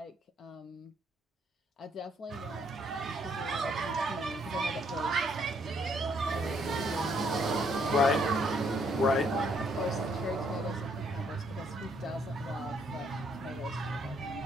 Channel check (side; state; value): both; normal; correlation 0.69